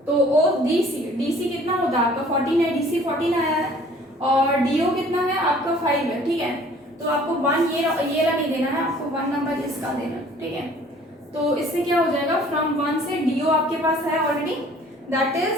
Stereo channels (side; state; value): both; normal; correlation 0.53